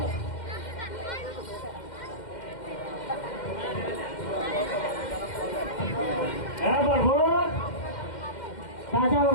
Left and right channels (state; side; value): late; right; 2.1 ms